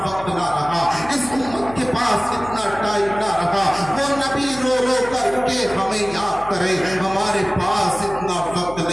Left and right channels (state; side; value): noise; left; hum, 16 dB below the sound